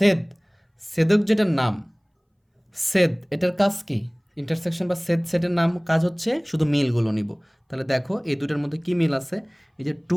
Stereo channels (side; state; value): both; identical; correlation 1.00